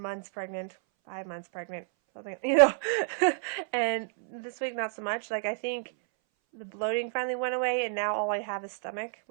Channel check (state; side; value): silent; left; 58 dB below the other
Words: pregnant, 5 months pregnant. something, you know. And this week, not so much. Like, I think the bloating finally went away, and now all I have is stomach,